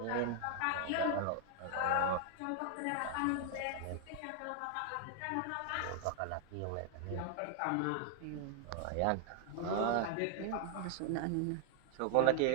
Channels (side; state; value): both; different; correlation 0.00